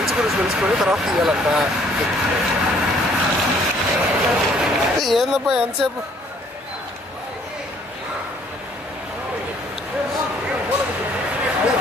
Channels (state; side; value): normal; both; correlation 0.61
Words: గురించి తెలుసుకొని తర్వాత తీయాలంట. ఏందబ్బా ఎంతసేపు?